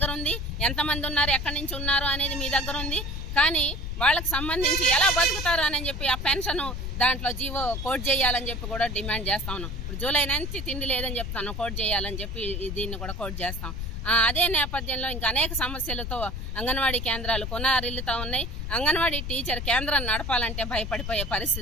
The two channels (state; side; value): noise; left; rumble, 5 dB below the sound